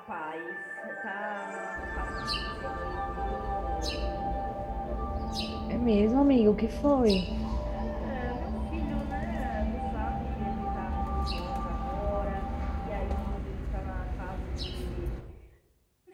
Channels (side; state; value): both; identical; correlation 1.00